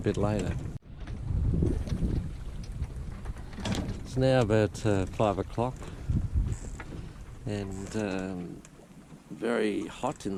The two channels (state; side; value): identical; both; correlation 1.00